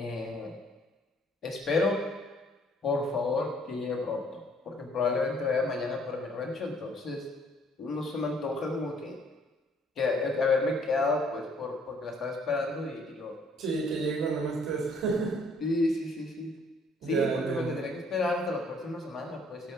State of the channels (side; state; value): both; normal; correlation 0.62